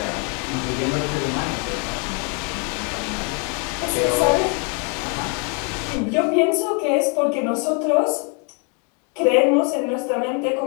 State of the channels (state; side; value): quieter; right; 37.1 dB